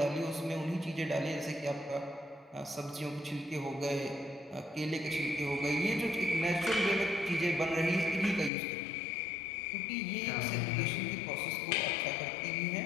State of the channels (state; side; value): drops out; right; at 8.5 s